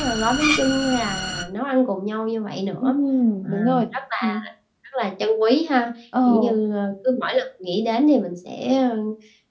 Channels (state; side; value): identical; both; correlation 1.00